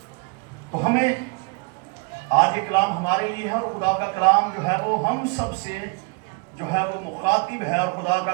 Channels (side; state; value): left; quieter; 31.0 dB